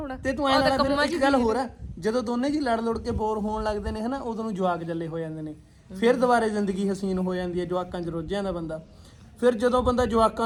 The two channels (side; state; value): both; identical; correlation 1.00